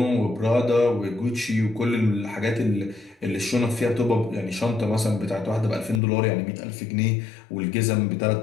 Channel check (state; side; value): drops out; right; at 6.0 s